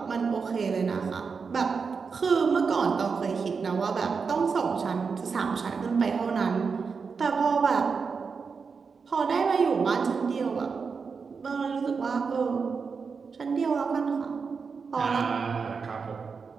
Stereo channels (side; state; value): left; quieter; 5.3 dB